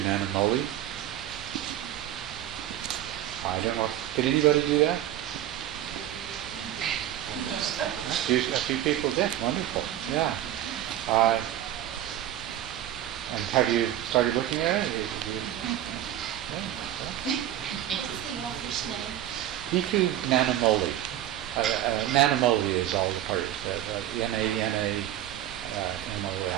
Nanamoli. I don't know. Did anybody do that? A few people did. Wonderful. Yeah. And have you started looking at it? What's the author's name? Bhikkhu Nanamoli. Nanamoli is all part of Nanamoli.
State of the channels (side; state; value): left; quieter; 12.2 dB